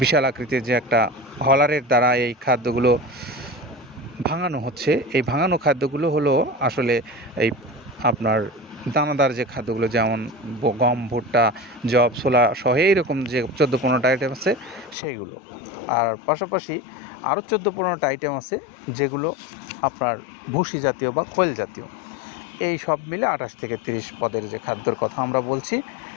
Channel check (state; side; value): drops out; right; at 15.0 s